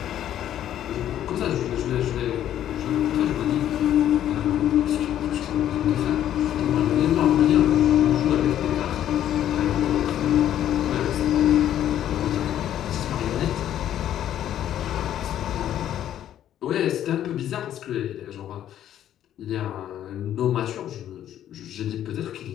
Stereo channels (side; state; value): right; quieter; 11.2 dB